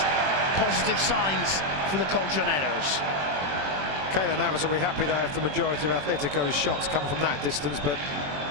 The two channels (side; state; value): left; late; 21 ms